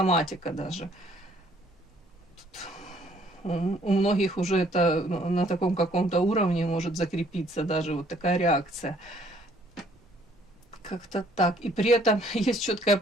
даже. Тут у многих уже это на таком каком-то уровне может закрепиться даже вот такая реакция. Как-то так. И при этом есть четкое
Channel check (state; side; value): normal; both; correlation 0.62